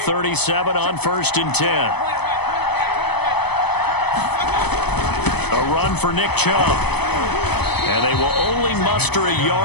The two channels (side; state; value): right; late; 0.98 ms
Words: on 1st and 10. A run for Nick Chubb. And they will only muster a